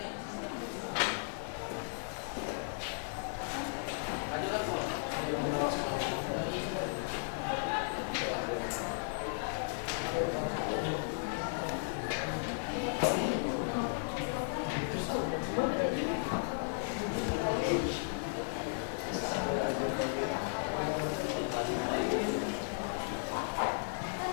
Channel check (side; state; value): right; silent; digital silence